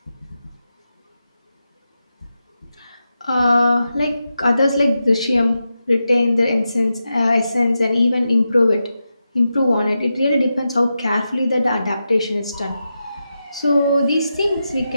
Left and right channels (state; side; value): inverted; both; correlation -0.89